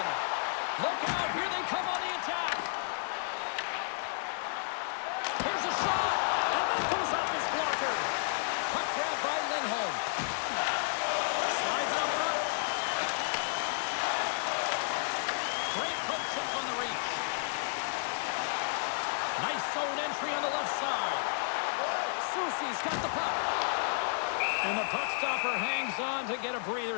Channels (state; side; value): silent; right; digital silence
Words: Look out, here they come on the attack. Here's a shot, and that goes off his blocker. Puck grab by Lindholm. Slides up front. Great poke check on the reach. Nice zone entry on the left side. Soucy's got the puck. And the puck stopper hangs on to get a